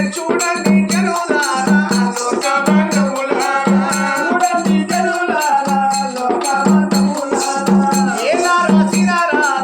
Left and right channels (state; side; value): identical; both; correlation 1.00